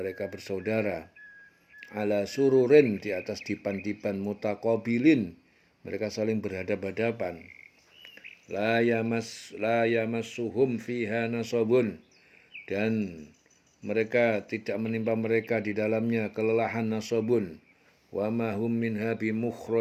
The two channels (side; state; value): both; identical; correlation 1.00